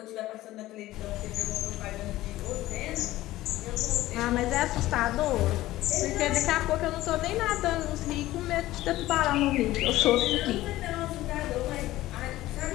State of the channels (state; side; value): quieter; right; 16.2 dB